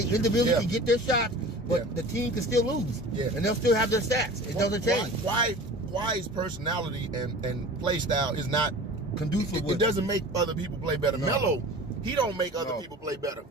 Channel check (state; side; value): normal; both; correlation 0.39